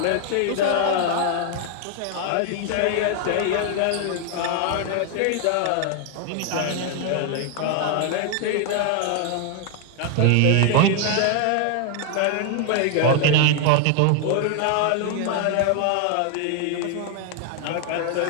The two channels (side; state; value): both; different; correlation 0.00